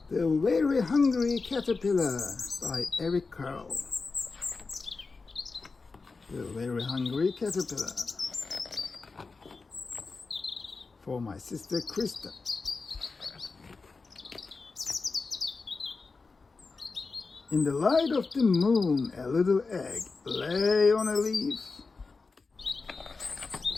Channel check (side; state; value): right; quieter; 4.2 dB